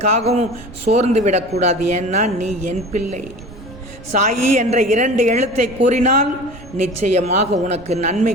சோர்ந்து விடக்கூடாது. ஏன்னா நீ என் பிள்ளை. சாயி என்ற 2 எழுத்தை கூறினால் நிச்சயமாக உனக்கு நன்மை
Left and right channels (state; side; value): noise; right; rumble, 19 dB below the sound